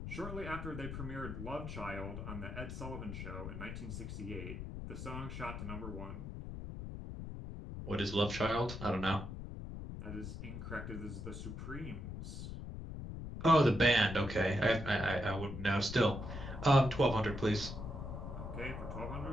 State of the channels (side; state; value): left; noise; rumble, 7 dB below the sound